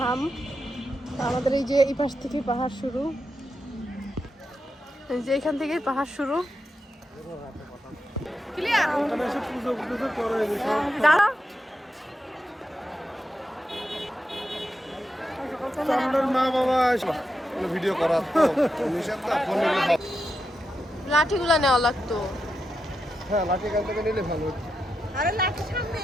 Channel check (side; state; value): both; normal; correlation 0.87